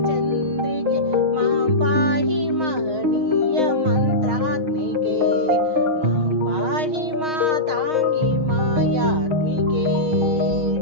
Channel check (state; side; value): late; left; 6.4 ms